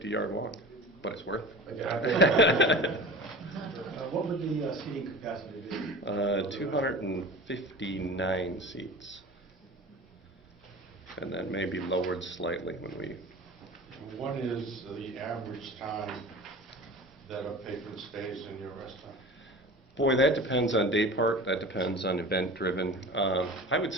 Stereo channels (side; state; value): both; normal; correlation 0.36